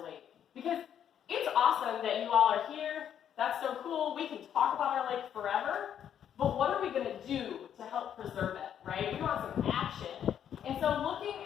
lake. Because it's awesome that you all are here. That's so cool. We can talk about our lake forever. But what are we going to do to help preserve it, right? We want some action. And so looking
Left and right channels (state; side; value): quieter; right; 9.3 dB